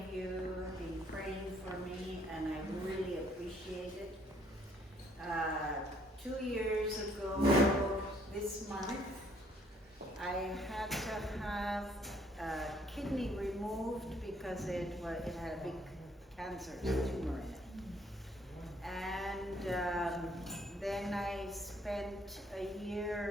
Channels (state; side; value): normal; both; correlation 0.65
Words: you have been praying for me and I really appreciate it. 2 years ago this month, I had to have a kidney removed because it had a big cancer tumor in it. And then I spent a